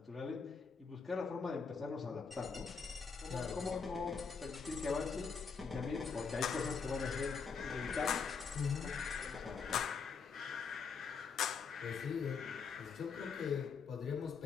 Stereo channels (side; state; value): right; quieter; 5.5 dB